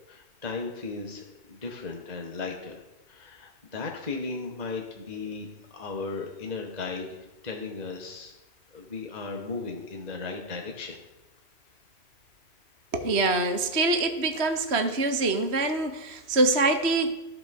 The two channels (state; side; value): late; left; 3.0 ms